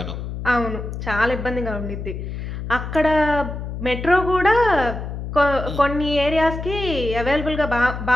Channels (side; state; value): left; noise; hum, 7 dB below the sound